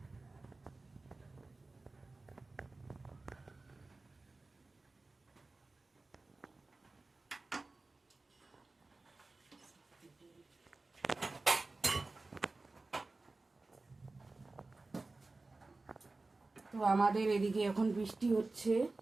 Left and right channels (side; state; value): left; quieter; 3.4 dB